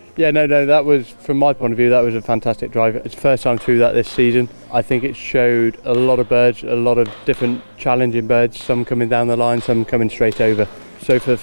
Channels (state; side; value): inverted; both; correlation -1.00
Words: Yeah, no, that was, from my point of view, that was a fantastic drive. It's the first time through that this season. I think it showed a lot of birds, a lot of different challenging birds, some coming down the line, some coming straight over. So for the